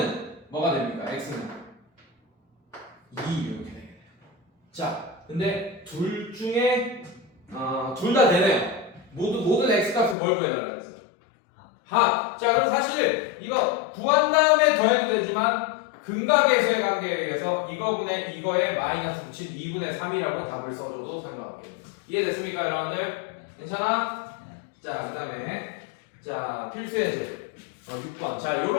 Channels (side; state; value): right; drops out; at 10.2 s